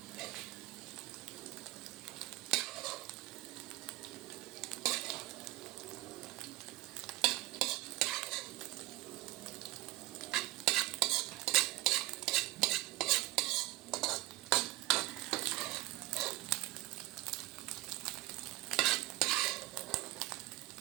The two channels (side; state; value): left; quieter; 18.2 dB